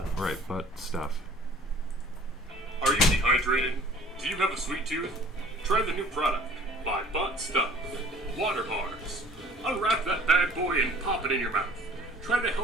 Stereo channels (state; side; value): normal; both; correlation 0.50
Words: right? But stuff. Are you dehydrated? Do you have a sweet tooth? Try the new product by Butt Stuff. Water bars. Unwrap that bad boy and pop it in your mouth. Try the